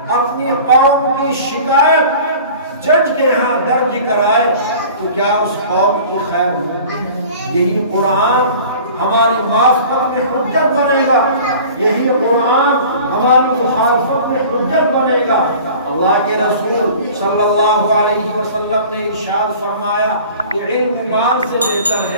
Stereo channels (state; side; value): inverted; both; correlation -0.43